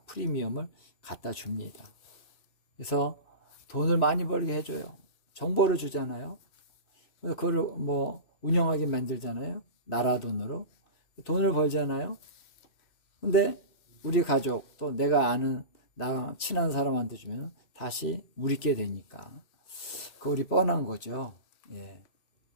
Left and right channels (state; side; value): late; right; 2.6 ms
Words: 프리미엄을 갖다 줍니다. 그래서 돈을 많이 벌게 해줘요. 정보를 주잖아요. 그래서 그걸 뭐 운영하게 만들잖아요. 나라 돈으로 돈을 벌잖아요. 근데 우리 가족 또 내가 아는 나 친한 사람한테 주면 다시 우리께 되니까 그 우리 뻔한 거죠.